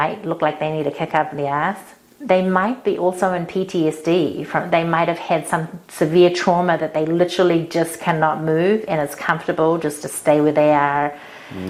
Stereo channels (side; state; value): both; identical; correlation 1.00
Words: look like they need a kick up the ass, they might be also in PTSD. They might have had some severe trauma that they literally just cannot move, and it's comfortable just to stay where they are.